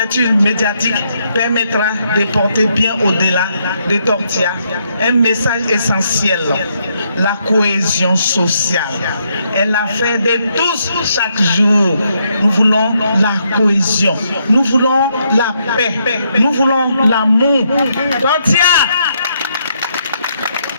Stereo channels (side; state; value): both; inverted; correlation -0.76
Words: médiatique permettra de porter bien au-delà de Tortilla un message essentiel, la cohésion sociale. Elle l'a fait de tous chaque jour. Nous voulons la cohésion, nous voulons la paix, nous voulons l'amour. Tortilla!